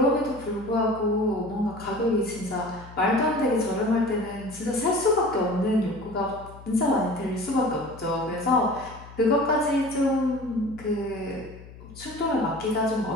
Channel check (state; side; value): noise; left; hum, 18 dB below the sound